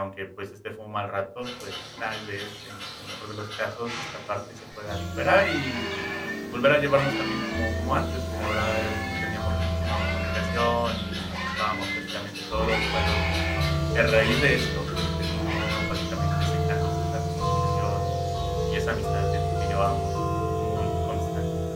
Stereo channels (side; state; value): both; identical; correlation 1.00